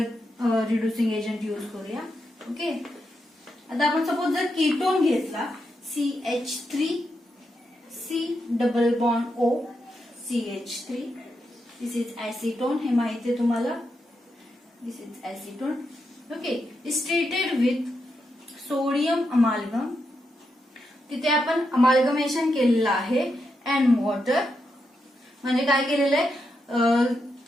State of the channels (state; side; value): normal; both; correlation 0.84